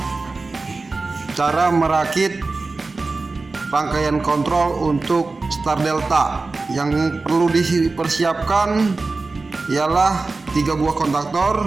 cara merakit rangkaian kontrol untuk Star Delta. Yang perlu dipersiapkan ialah 3 buah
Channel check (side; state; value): left; quieter; 3.7 dB